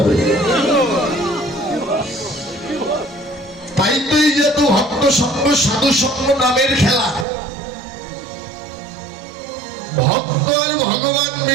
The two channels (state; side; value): drops out; left; at 7.2 s